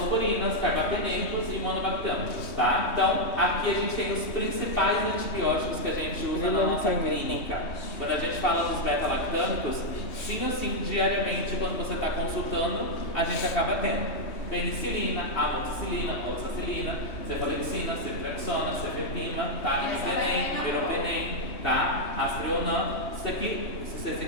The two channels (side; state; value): right; late; 3.2 ms